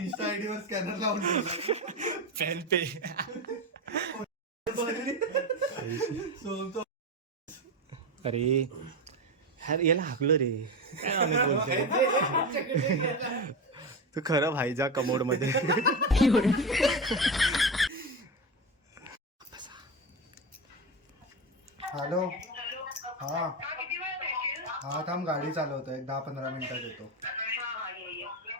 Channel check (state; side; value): normal; both; correlation 0.18